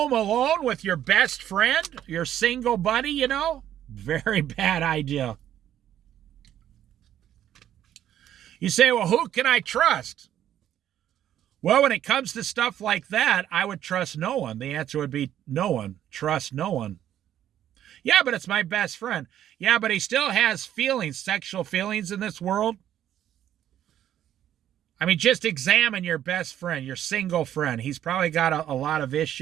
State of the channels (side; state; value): left; quieter; 11.1 dB